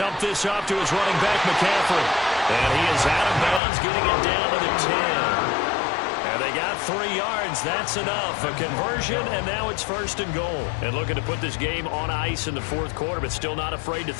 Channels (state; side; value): drops out; right; at 3.6 s